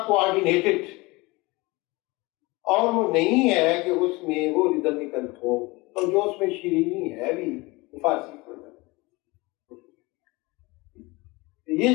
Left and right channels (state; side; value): quieter; right; 23.5 dB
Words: کوآرڈینیٹڈ، اور وہ نہیں ہے کہ اس میں وہ ریدمیکل ہو، اور جو اس میں شیرینی ہے بھی فارسی پڑھ جائے.